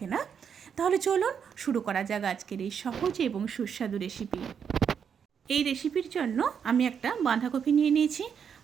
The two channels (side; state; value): left; quieter; 7.3 dB